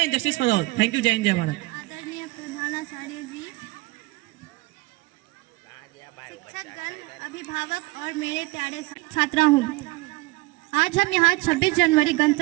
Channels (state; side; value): quieter; left; 22.0 dB